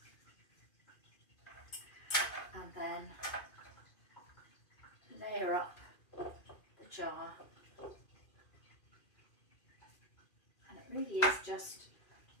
and then layer up the jar, and it really is just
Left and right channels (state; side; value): late; right; 2.4 ms